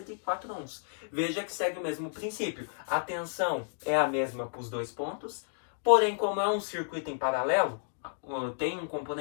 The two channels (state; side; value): silent; right; digital silence